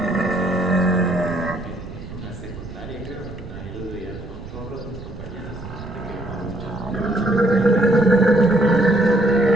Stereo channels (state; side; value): noise; right; rumble, 13 dB below the sound